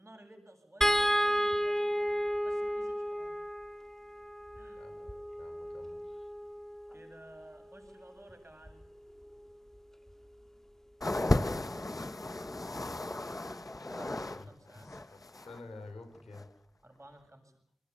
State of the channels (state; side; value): normal; both; correlation 0.97